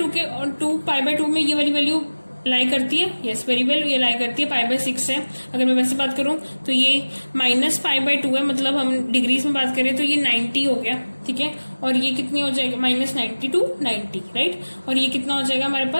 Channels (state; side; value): inverted; both; correlation -1.00